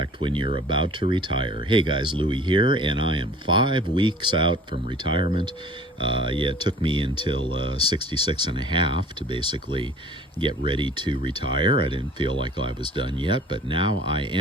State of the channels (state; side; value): normal; both; correlation 0.48